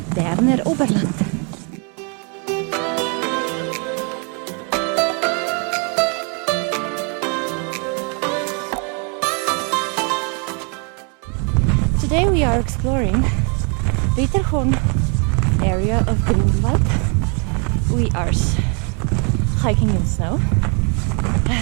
Berner Oberland. Today we are exploring Wetterhorn area of Grindelwald. We are hiking in snow,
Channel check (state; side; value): quieter; left; 37.1 dB